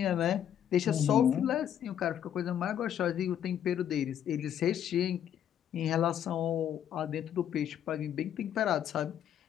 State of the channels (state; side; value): quieter; right; 9.8 dB